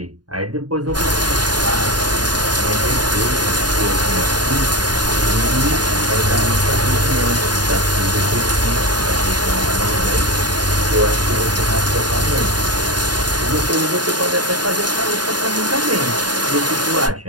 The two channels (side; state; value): left; late; 0.70 ms